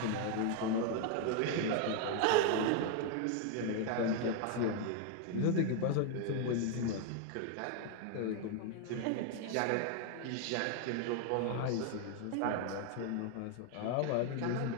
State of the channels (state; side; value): different; both; correlation 0.00